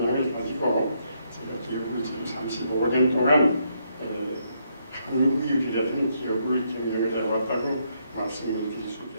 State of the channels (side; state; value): both; inverted; correlation -0.75